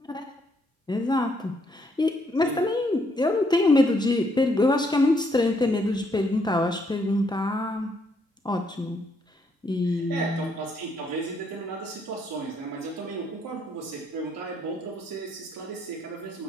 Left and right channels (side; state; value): both; normal; correlation 0.72